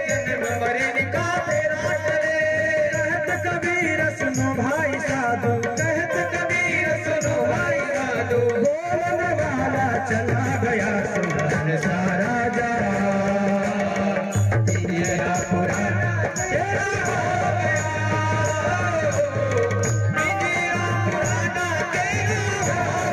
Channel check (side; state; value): both; identical; correlation 1.00